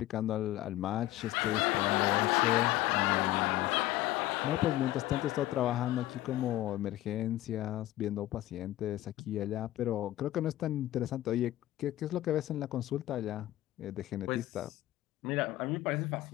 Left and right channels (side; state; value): right; quieter; 15.2 dB